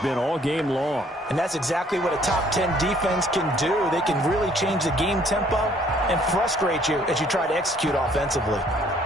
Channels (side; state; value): both; normal; correlation 0.61